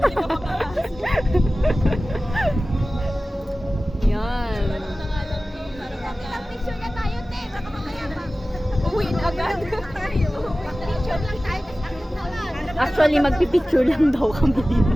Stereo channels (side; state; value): both; normal; correlation 0.96